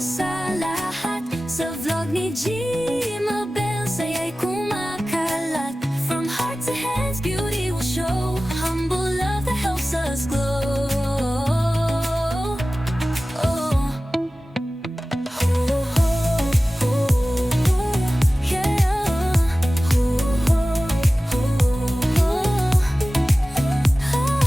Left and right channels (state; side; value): normal; both; correlation 0.96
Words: sa lahat. Sa vlog ni Gmabel, saya'y kumakalat. From heart to hands, beauty will show. Humble love that helps us glow. Oh. Yeah.